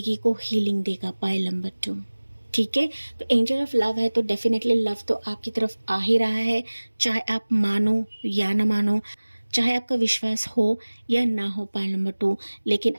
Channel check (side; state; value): both; inverted; correlation -1.00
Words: को हीलिंग देगा पाइल नंबर 2, ठीक है। तो एंजल ऑफ लव है तो डेफिनेटली लव तो आपकी तरफ आ ही रहा है, चाहे आप मानो या ना मानो, चाहे आपका विश्वास हो या ना हो पाइल नंबर 2, लेकिन